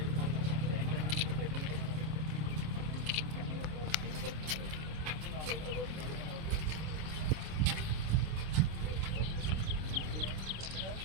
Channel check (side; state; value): left; late; 26 ms